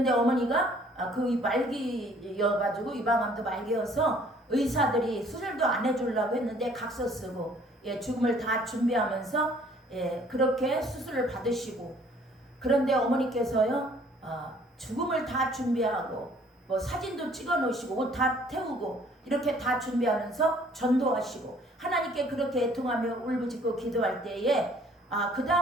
어머니가 그 말기여가지고 유방암도 말기여서 의사들이 수술도 안 해주려고 했는데 각서 쓰고 죽음을 다 준비하면서 그렇게 수술을 받으시고, 그런데 어머니께서요, 죽음을 다 준비하고 뭐 사진도 찍어 놓으시고 옷 다 태우고 이렇게 다 준비하면서 전도하시고 하나님께 그렇게 애통하며 울부짖고 기도할 때에 그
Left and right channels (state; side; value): normal; both; correlation 0.58